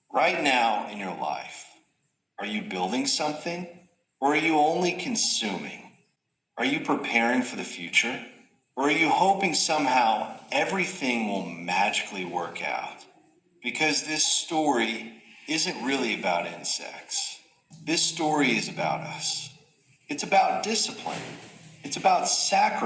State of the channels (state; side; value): identical; both; correlation 1.00